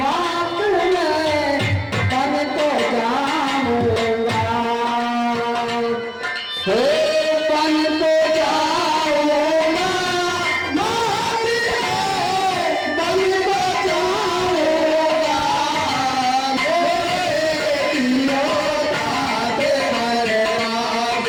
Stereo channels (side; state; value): both; identical; correlation 1.00